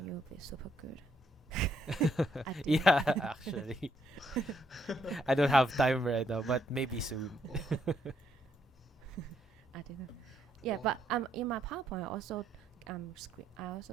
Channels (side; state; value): both; normal; correlation 0.73